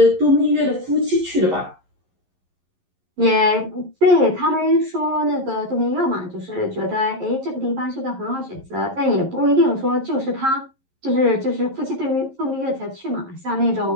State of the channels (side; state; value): left; late; 11 ms